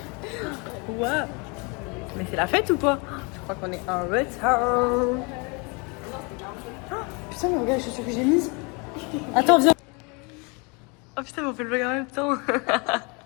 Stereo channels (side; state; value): right; quieter; 30.9 dB